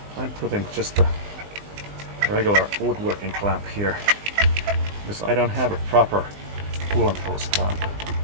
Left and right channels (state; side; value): late; left; 20 ms